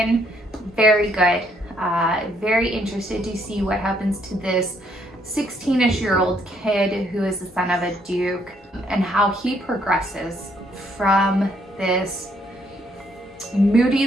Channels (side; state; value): both; normal; correlation 0.70